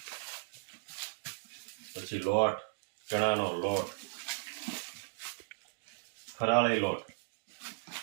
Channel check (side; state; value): left; silent; digital silence